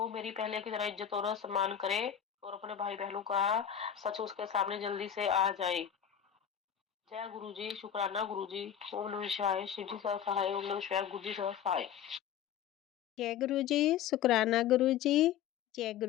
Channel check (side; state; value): right; quieter; 9.3 dB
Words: मेरी पहले की तरह इज्जत और सम्मान करे और अपने भाई बहनों का सच उसके सामने जल्दी से आ जाए। जय गुरुजी, शुक्राना गुरुजी। ओम नमः शिवाय, शिव जी सदा सहाय। ओम नमः शिवाय, गुरु जी सदा सहाय। जय गुरुजी, शुक्राना गुरुजी। जय